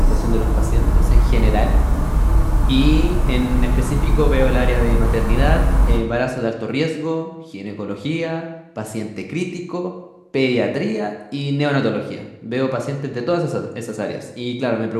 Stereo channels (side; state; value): both; identical; correlation 1.00